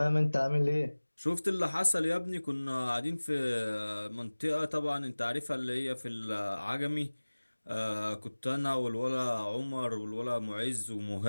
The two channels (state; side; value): inverted; both; correlation -1.00